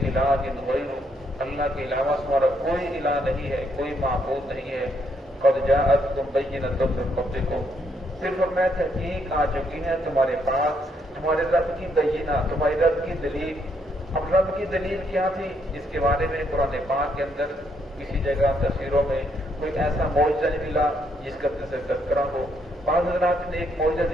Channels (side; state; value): both; normal; correlation 0.74